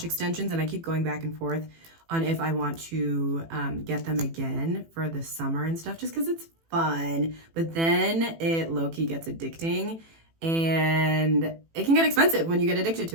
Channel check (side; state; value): left; late; 18 ms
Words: extensions and I keep going back and forth on if I want to get them again for the summer and stuff, just because it's fun. But then it low-key gets addicting and it can get expensive when you get addicted